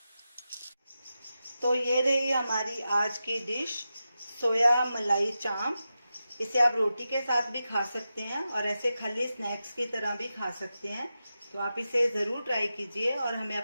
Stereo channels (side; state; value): both; inverted; correlation -0.91